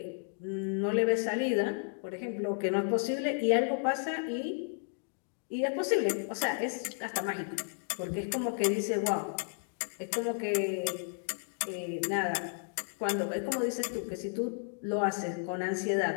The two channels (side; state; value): right; silent; 56 dB below the other